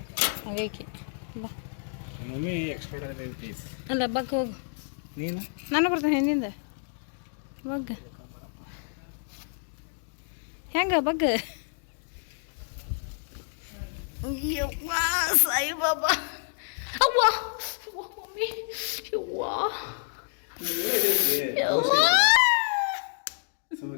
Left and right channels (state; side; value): silent; right; digital silence